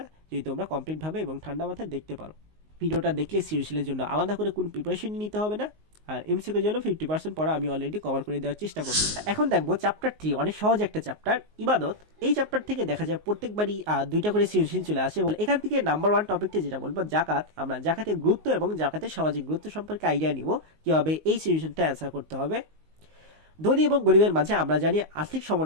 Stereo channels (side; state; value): left; late; 19 ms